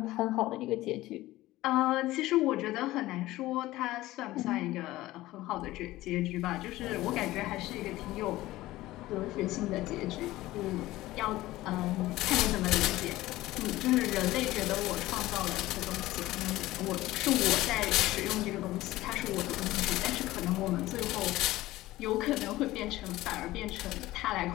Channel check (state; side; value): quieter; right; 17.0 dB